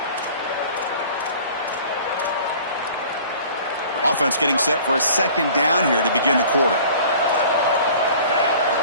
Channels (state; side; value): inverted; both; correlation -0.47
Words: Offense getting set for a second down here to begin the quarter.